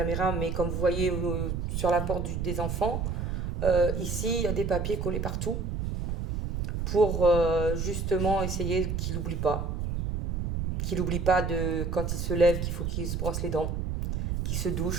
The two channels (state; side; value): noise; right; rumble, 2 dB below the sound